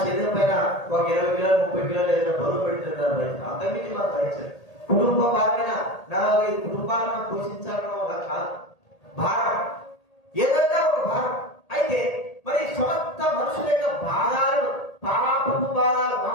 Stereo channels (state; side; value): late; right; 1.8 ms